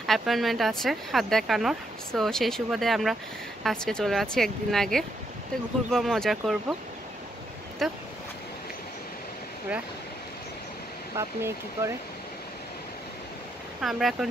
অ্যাপয়েন্টমেন্ট আছে হাত দেখানোর। সো সেই সুবাদে আমরা আজকে চলে যাচ্ছি একদিন আগে। তো ঘুরবো, মজা করবো। তো ওরা বাপ মেয়ে কী করে, আমরা এখন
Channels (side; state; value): both; normal; correlation 0.77